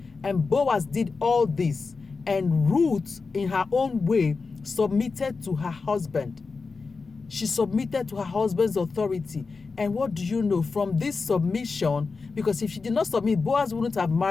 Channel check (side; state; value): right; quieter; 4.4 dB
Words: And Boaz did all this. And Ruth, in her own way, submitted to her husband. She submitted to her husband's authority. And what do you know? From this submission, because if she did not submit, Boaz wouldn't have